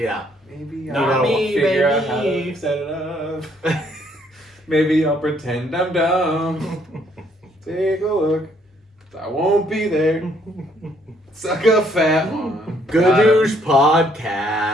Maybe Not I'll me, figure out how baby. to set it up. Maybe I'll pretend I'm dumb. Take a look. I won't be there. Suck a fat one. Gadoosh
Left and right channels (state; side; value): normal; both; correlation 0.67